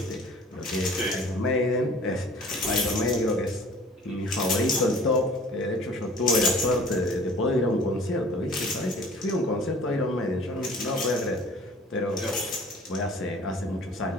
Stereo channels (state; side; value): normal; both; correlation 0.48